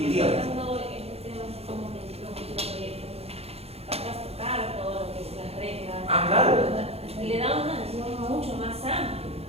dígame. hablando de este tema así como de los proyectos, vas a tocar todo lo que es las reglas. Ah, claro. Le da una visión mucho más amplia,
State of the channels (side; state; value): left; late; 0.29 ms